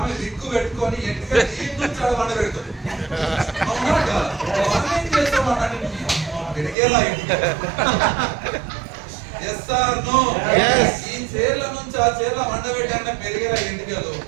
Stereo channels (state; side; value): drops out; left; at 6.8 s